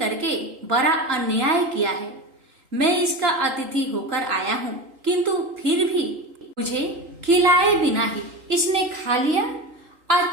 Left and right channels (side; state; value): left; late; 3.8 ms